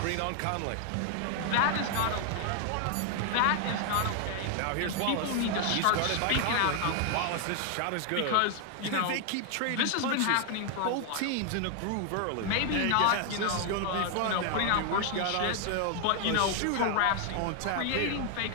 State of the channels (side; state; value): both; different; correlation 0.00